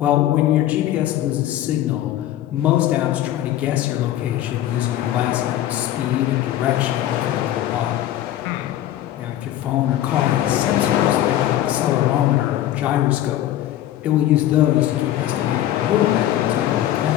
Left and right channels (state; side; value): quieter; right; 12.9 dB